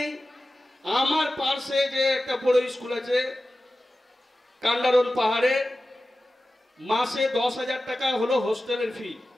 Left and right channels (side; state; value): both; normal; correlation 0.95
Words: আমার পাশে যে একটা বড় স্কুল আছে কান্ডারন পাহাড়ে, মাসে 10,000 টাকা হলো হোস্টেলের ফি।